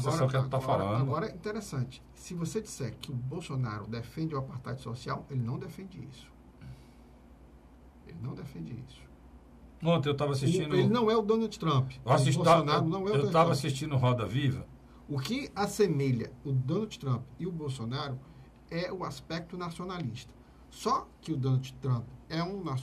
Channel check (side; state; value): both; identical; correlation 1.00